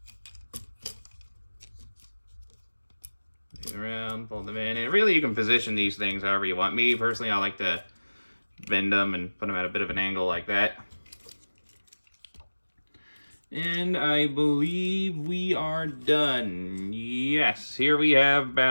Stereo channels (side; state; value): both; inverted; correlation -1.00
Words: Around, fold them in, and really you can position these things however you want. Me personally, I like to bend them and put them at a bit of an angle like that. And I believe we are done. Yes, here we have